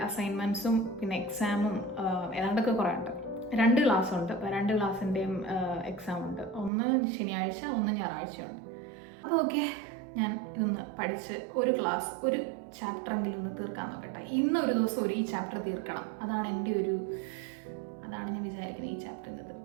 അസൈൻമെൻറ്റ്സും പിന്നെ എക്സാമും ഏതാണ്ടൊക്കെ കുറേ ഉണ്ട്. 2 ക്ലാസ് ഉണ്ട്. അപ്പോൾ 2 ക്ലാസ്സിൻ്റെയും എക്സാം ഉണ്ട്. ഒന്ന് ശനിയാഴ്ച, ഒന്ന് ഞായറാഴ്ചയുണ്ട്. അപ്പോൾ ഓക്കെ, ഞാൻ ഇതൊന്ന് പഠിച്ച് ഒരു ക്ലാസ്, ഒരു ചാപ്റ്ററെങ്കിലും ഒന്ന് തീർക്കാൻ നോക്കട്ടെ. ഇന്നൊരു ദിവസം ഈ ചാപ്റ്റർ തീർക്കണം. അതാണ് ഞാൻ വിചാരിക്കുന്നത്. ഈ ചാപ്റ്റർ ഇന്ന്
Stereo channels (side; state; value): left; drops out; at 6.7 s